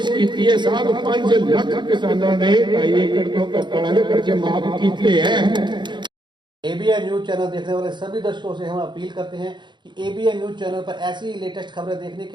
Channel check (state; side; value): late; left; 0.22 ms